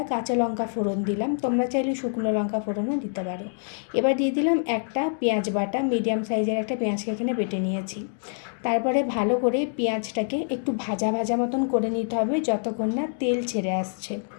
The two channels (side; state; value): right; silent; digital silence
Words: কাঁচা লঙ্কা ফোড়ন দিলাম। তোমরা চাইলে শুকনো লঙ্কা ফোড়নও দিতে পারো। এবার দিয়ে দিলাম একটা পেঁয়াজ বাটা, মিডিয়াম সাইজের একটা পেঁয়াজকে এখানে বেটে নিয়েছি। তারপরে ভালো করে পেঁয়াজটাকে একটু ভাজা ভাজা মতন করে নিতে হবে যতক্ষণ না তেল ছেড়ে আসছে।